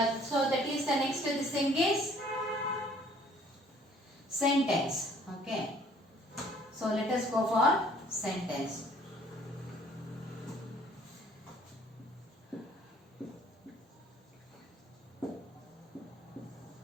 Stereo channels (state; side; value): normal; both; correlation 0.57